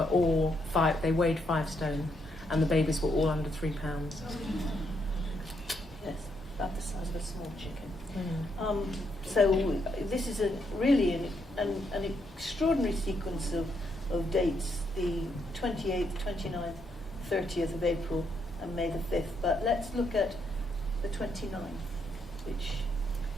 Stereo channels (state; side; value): normal; both; correlation 0.76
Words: all they weighed 5 stone, and the babies were all under 3 pounds. Yes, about the size of a small chicken. So this is really an extraordinary sequence of dates, the 28th, 29th, 30th of April and May the 5th. But let's look at the 29th, which